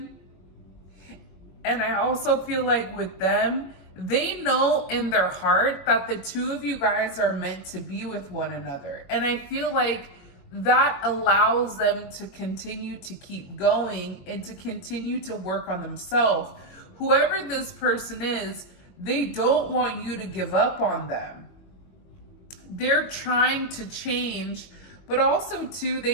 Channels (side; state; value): right; late; 22 ms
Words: And I also feel like with them, they know in their heart that the two of you guys are meant to be with one another. And I feel like that allows them to continue to keep going and to continue to work on themselves. Whoever this person is, they don't want you to give up on them. They're trying to change, but also too,